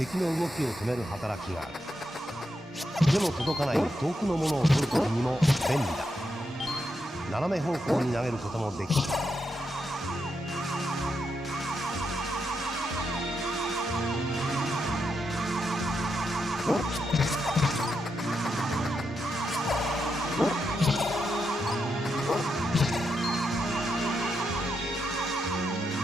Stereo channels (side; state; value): both; normal; correlation 0.83